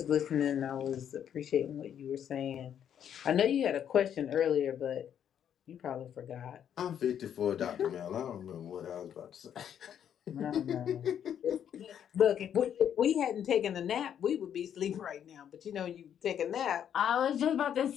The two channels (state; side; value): quieter; right; 9.2 dB